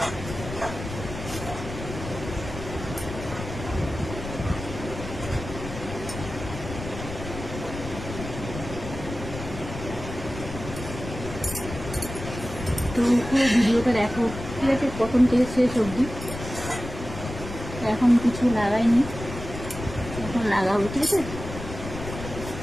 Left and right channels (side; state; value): left; noise; rumble, 9 dB below the sound